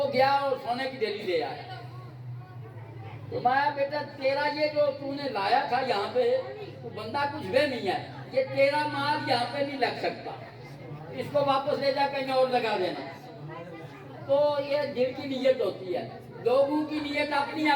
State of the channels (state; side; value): identical; both; correlation 1.00